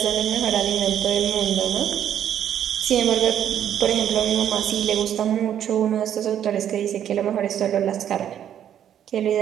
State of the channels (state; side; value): quieter; left; 10.0 dB